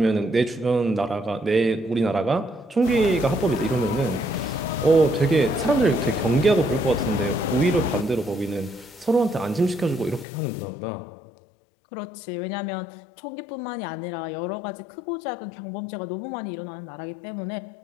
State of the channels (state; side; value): drops out; right; at 10.2 s